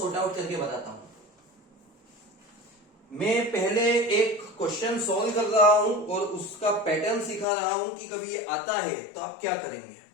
आउट करके बताता हूं। मैं पहले एक क्वेश्चन सॉल्व कर रहा हूं और उसका पैटर्न सिखा रहा हूं कि कभी ये आता है तो आप क्या करेंगे।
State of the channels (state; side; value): drops out; right; at 7.5 s